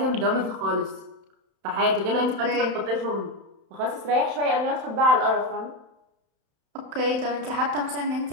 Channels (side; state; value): left; late; 31 ms